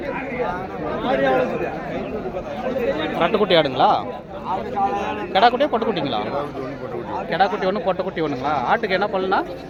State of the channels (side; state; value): both; identical; correlation 1.00